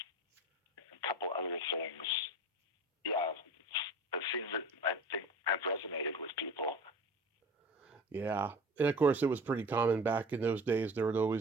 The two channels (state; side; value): normal; both; correlation 0.38